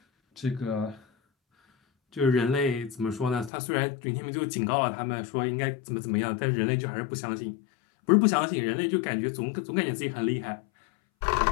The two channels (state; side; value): drops out; right; at 3.5 s